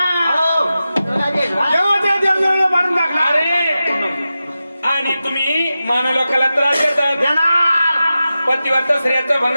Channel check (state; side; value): inverted; both; correlation -0.93